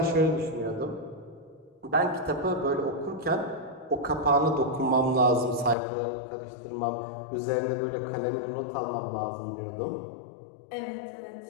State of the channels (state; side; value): drops out; right; at 5.8 s